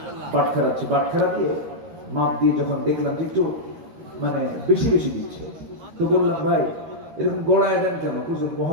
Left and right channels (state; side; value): late; left; 13 ms